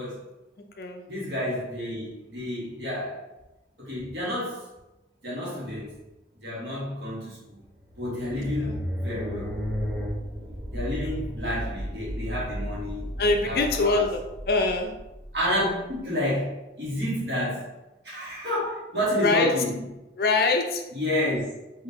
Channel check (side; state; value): both; normal; correlation 0.28